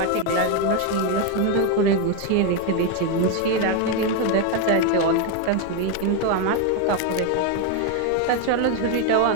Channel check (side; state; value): both; different; correlation 0.02